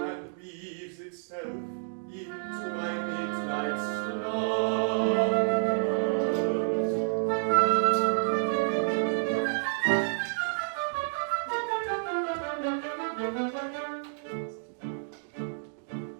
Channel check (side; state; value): left; silent; digital silence